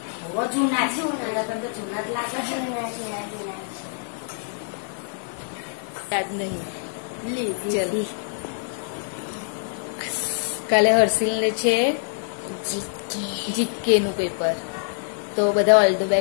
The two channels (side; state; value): right; silent; digital silence